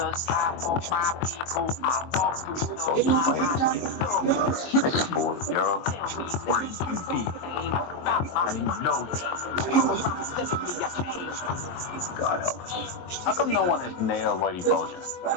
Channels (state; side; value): late; right; 23 ms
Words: God help us. How come no one has nailed Lady Moses?